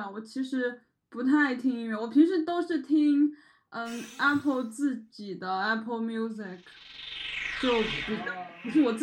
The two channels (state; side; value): identical; both; correlation 1.00